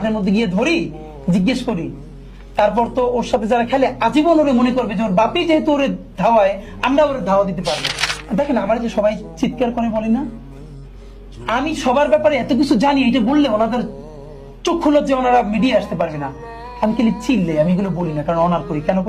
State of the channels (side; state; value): both; identical; correlation 1.00